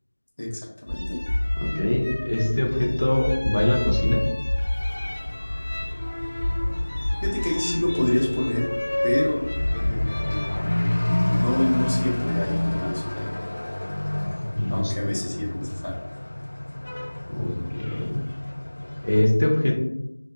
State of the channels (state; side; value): inverted; both; correlation -1.00